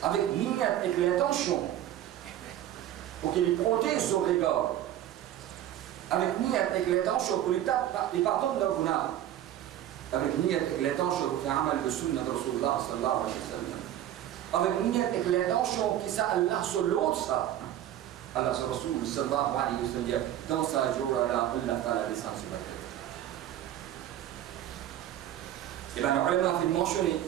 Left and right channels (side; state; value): left; quieter; 12.1 dB